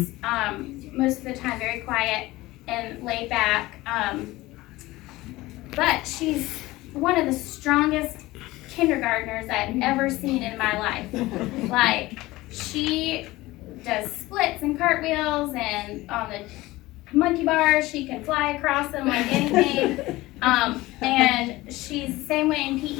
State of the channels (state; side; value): quieter; right; 19.0 dB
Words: most of the time, very quiet and laid back. But she's one of the strongest kindergartners I've ever seen in my life. Like, she does splits and cartwheels, and on the monkey bars, she can fly across them like anything. And she's the same way in